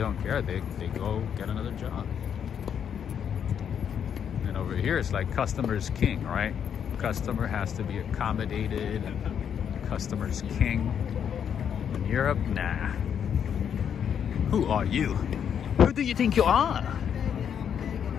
don't care. They go get another job. And over here, it's like customer's king, right? Customer has to be accommodated, and customer's king. In Europe, nah. Who are you? Who do you think you are?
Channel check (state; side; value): quieter; right; 8.2 dB